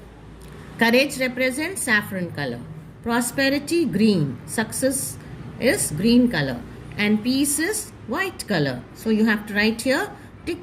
Courage represents saffron color. Prosperity, green. Success is green color. And peace is white color. So you have to write here,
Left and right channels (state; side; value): identical; both; correlation 1.00